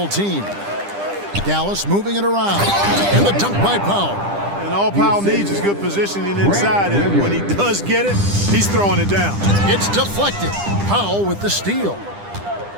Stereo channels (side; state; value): left; late; 10 ms